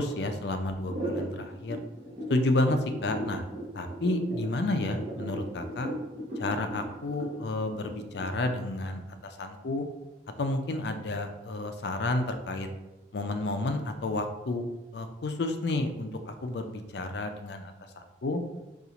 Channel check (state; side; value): normal; both; correlation 0.53